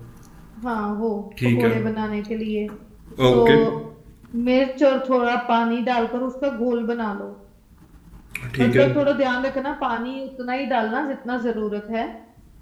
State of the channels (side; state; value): both; identical; correlation 1.00